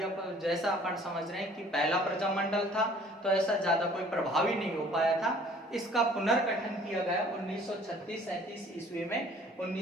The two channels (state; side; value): normal; both; correlation 0.54